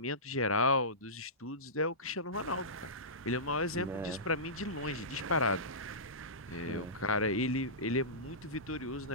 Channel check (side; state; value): both; normal; correlation -0.20